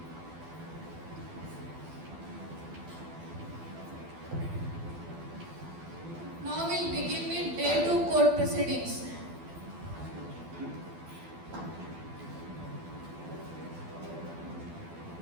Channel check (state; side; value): late; left; 12 ms